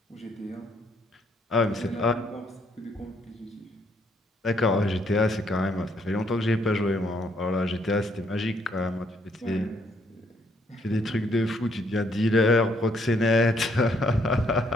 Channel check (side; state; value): both; normal; correlation 0.70